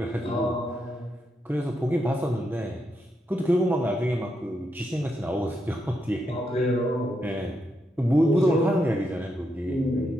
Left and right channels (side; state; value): both; normal; correlation 0.82